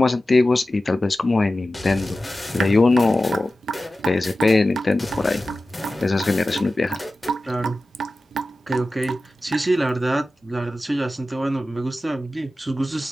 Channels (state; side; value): normal; both; correlation 0.95